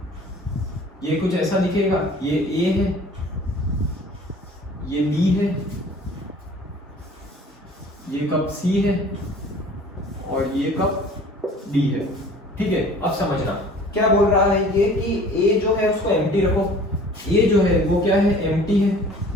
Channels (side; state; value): both; normal; correlation 0.48